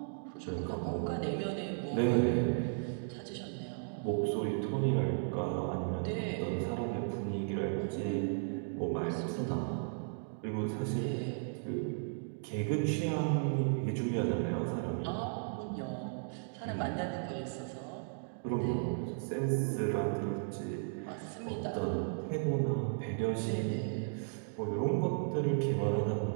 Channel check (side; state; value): left; silent; digital silence